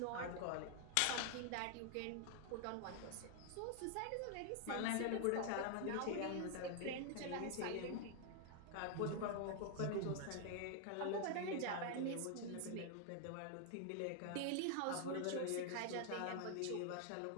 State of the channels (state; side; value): different; both; correlation 0.00